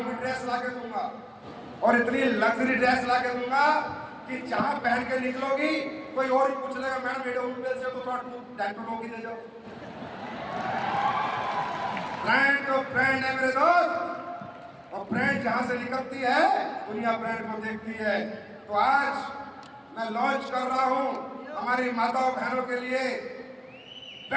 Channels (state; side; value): identical; both; correlation 1.00